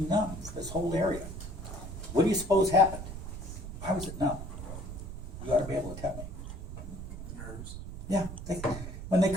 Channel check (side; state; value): right; noise; rumble, 9 dB below the sound